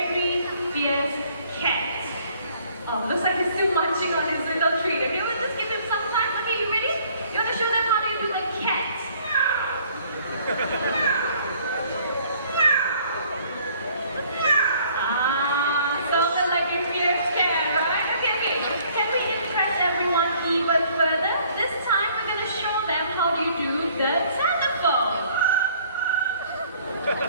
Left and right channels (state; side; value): inverted; both; correlation -0.59